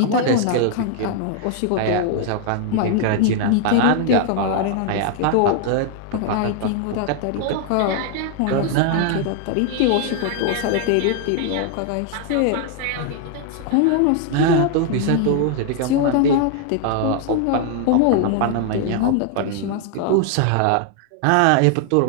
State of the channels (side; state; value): both; different; correlation 0.00